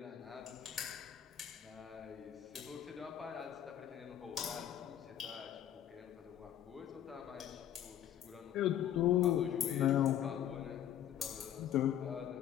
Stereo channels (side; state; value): right; quieter; 10.7 dB